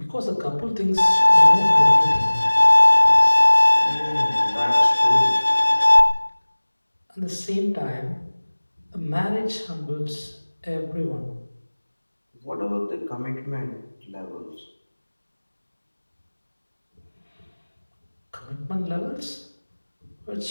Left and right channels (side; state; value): both; inverted; correlation -1.00